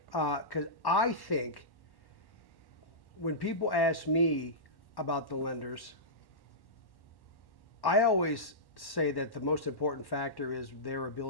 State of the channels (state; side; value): late; right; 1.1 ms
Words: Because I think when people ask me about the lenders, I always say that the most important factor is their